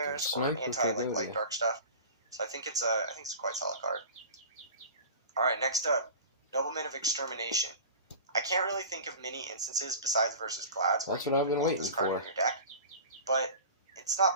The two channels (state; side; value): inverted; both; correlation -0.36